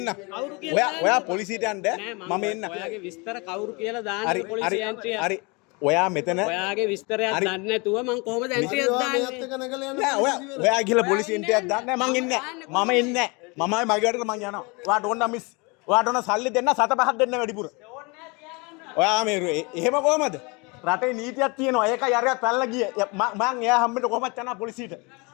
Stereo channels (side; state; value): right; quieter; 28.6 dB